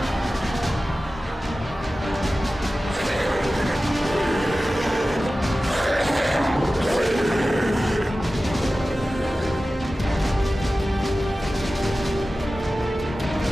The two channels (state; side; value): normal; both; correlation 0.95